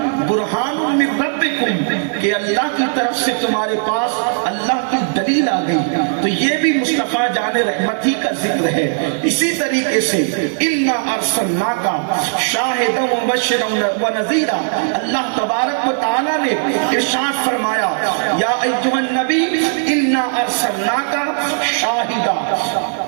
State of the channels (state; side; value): silent; left; digital silence